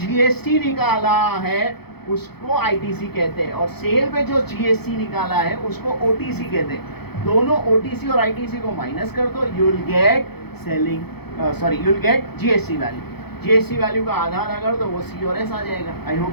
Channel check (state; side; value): late; right; 0.97 ms